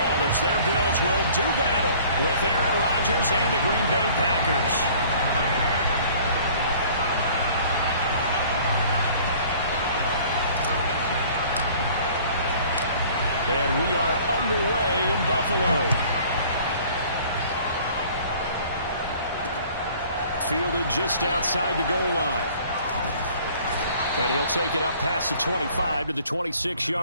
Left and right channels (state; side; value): inverted; both; correlation -0.52